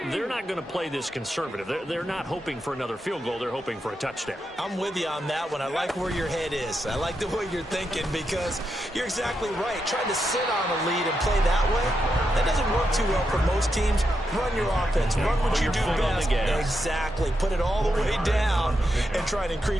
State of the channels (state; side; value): normal; both; correlation 0.85